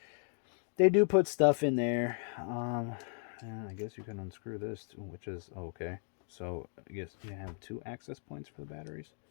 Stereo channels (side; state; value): right; silent; 54 dB below the other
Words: they do put stuff in there. I guess you can unscrew this too, which is okay. So I guess you have 2 access points for the batteries.